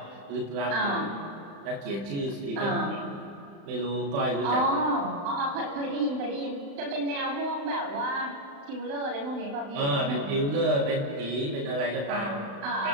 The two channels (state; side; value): late; left; 35 ms